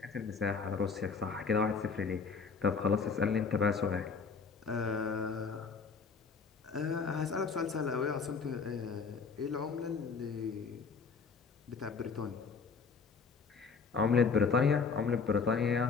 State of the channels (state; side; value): quieter; right; 5.2 dB